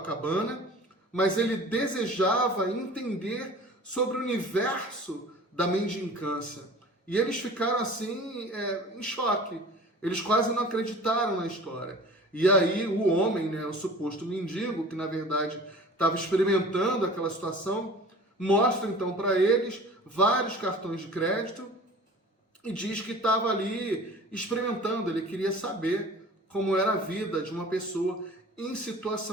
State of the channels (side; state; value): both; normal; correlation 0.42